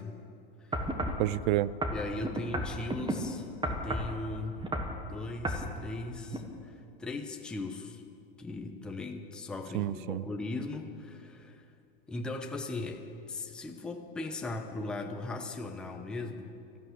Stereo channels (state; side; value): normal; both; correlation 0.35